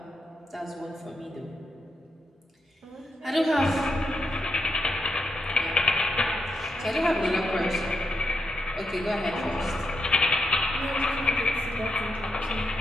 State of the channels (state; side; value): normal; both; correlation 0.82